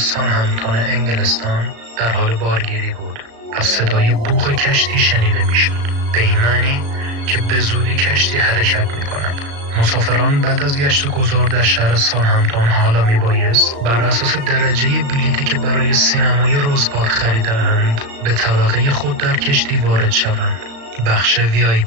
انگلستان در حال بارگیری بود و صدای بوق کشتی شنیده می‌شد، به این معنی که به زودی کشتی حرکت می‌کند. مسافران بعد از گشت و گذار در شهر سانهامپتون حالا میبایست بر اساس درجه بلیطی که برای سینمای روزباد خریده‌اند به طبقه خود در کشتی وارد شوند، بخش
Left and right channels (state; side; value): late; left; 35 ms